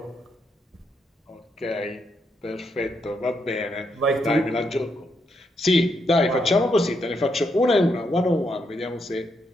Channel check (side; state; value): both; normal; correlation 0.79